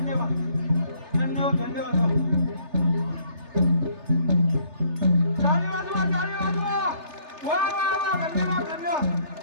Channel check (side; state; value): left; late; 3.3 ms